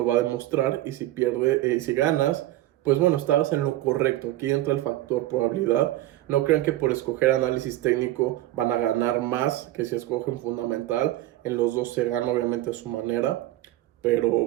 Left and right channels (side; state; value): left; quieter; 15.3 dB